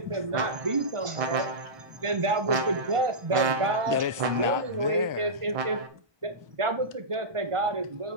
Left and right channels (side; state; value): left; late; 1.4 ms